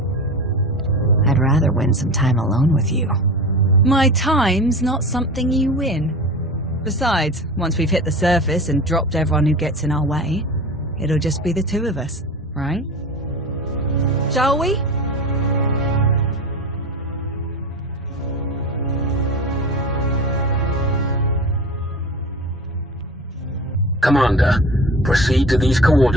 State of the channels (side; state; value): both; normal; correlation 0.32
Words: I'd rather win some time alone with you. My time's not something you win. Besides, once we've hit the surface and dropped everyone who gets in our way, it'll just be the two of us, right? Shall we? Commander, proceed to these